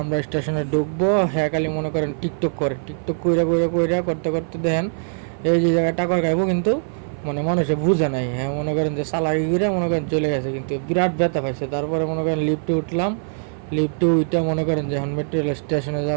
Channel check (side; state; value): left; silent; 58 dB below the other